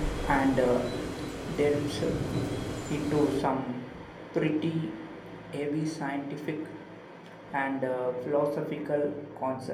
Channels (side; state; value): both; identical; correlation 1.00